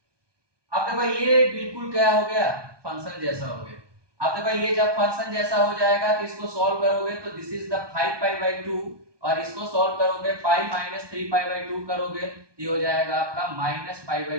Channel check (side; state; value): left; late; 1.2 ms